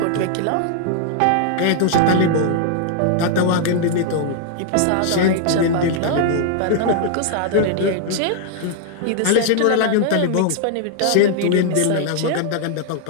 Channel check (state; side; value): different; both; correlation 0.00